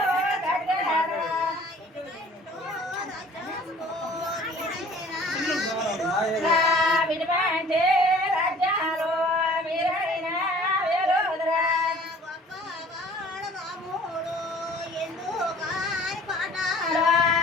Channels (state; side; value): normal; both; correlation 0.50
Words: గడ్డారు విడిపంటే రాజ్యాలు మీరైన వేలుదరా